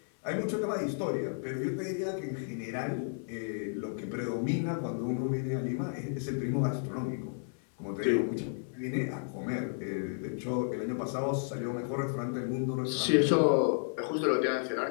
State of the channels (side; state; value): right; silent; digital silence